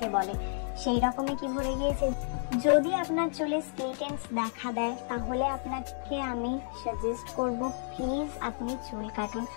বলে, সেই রকমই কি ভরে গিয়েছে? যদি আপনার চুলে স্প্লিট এন্ডস দেখা দেয়, তাহলে আপনাকে আমি সাজেস্ট করব প্লিজ আপনি চুল কাটুন।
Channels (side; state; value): right; silent; 57 dB below the other